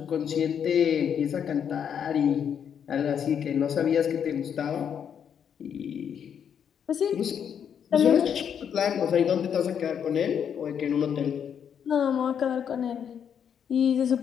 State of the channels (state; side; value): quieter; right; 8.1 dB